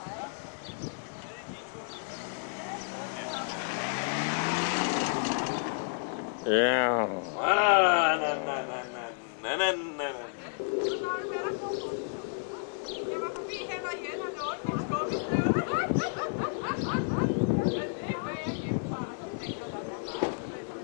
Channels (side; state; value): right; silent; 57 dB below the other